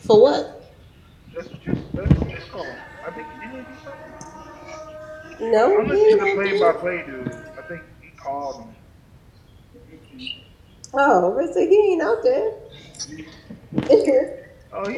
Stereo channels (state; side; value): identical; both; correlation 1.00